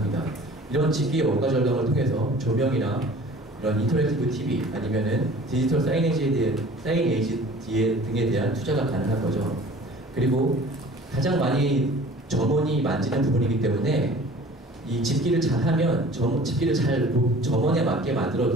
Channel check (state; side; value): normal; both; correlation 0.46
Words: 이런 집기의 원가 절감을 통해서 조명이나 이런 인터랙티브 TV 아니면은 디지털 사이네지 등에 대한 투자가 가능한 거죠. 그리고 가장 많이 점원이 만지는 부분이기 때문에 이 집기를 잘하면 집기를 잘 점원에 맞게